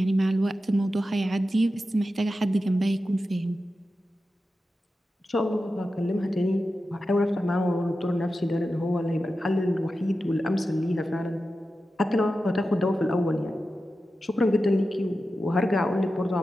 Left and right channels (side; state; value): both; normal; correlation 0.92